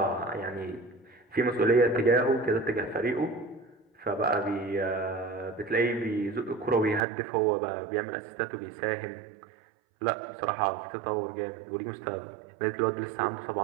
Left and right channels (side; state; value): left; drops out; at 7.0 s